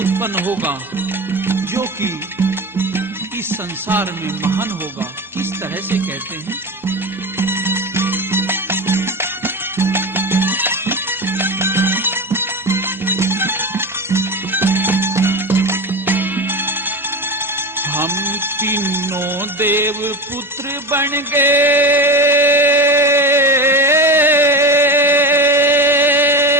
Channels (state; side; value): normal; both; correlation 0.25